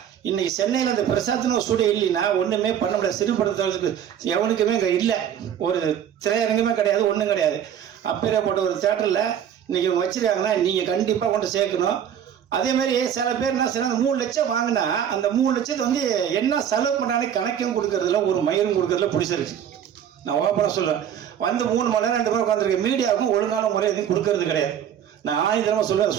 இன்னைக்கு சென்னையில் இந்த பிரசாத்னு ஒரு ஸ்டூடியோ இல்லைன்னா ஒன்றுமே பண்ண முடியாது. சிறுபடுத்துறதுக்கு எவனுக்குமே இங்கே இல்லை, ஒரு திரையரங்குமே கிடையாது, ஒன்றும் கிடையாது. அப்பேற்பட்ட ஒரு தேட்டரில் இன்னைக்கு இவங்க வச்சிருக்காங்கன்னா நீங்கள் கண்டிப்பாக கொண்டு சேர்க்கணும். அதேமாதிரி சில பேர் என்ன செய்யணும், 3 லட்சம் வாங்கினா அந்த 3 லட்சத்தை என்ன செலவு பண்ணாலே கணக்கும் கொடுக்கறதுல ஒரு மயிரும் கொடுக்கறதுல பிடிச்சிருக்கு. நான் ஓப்பனாக சொல்லுவேன். 3 மணி நேரம் 2 பேர் உட்காந்துருக்கேன். மீடியாவுக்கும் ஒழுங்கான முறை எதுவும் கொடுக்கறது கிடையாது. நான் 1000 தடவை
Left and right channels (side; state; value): left; quieter; 9.3 dB